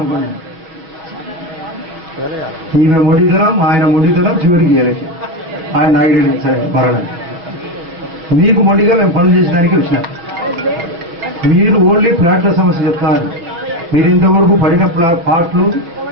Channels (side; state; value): left; late; 6.1 ms